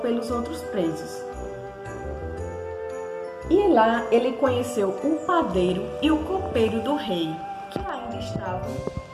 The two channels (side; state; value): both; identical; correlation 1.00